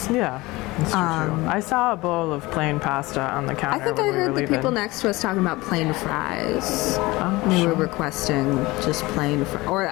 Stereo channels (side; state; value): right; quieter; 21.1 dB